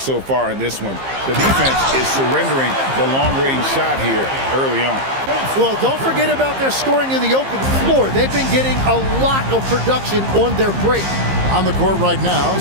so far in this one. The defense is surrendering the long-range shot here early on. Well, don't forget about their scoring in the open floor. They've been getting a lot of production on their break. On the court right now,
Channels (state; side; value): late; left; 15 ms